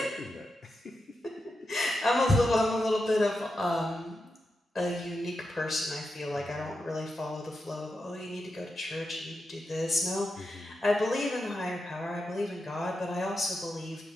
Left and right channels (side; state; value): both; normal; correlation 0.88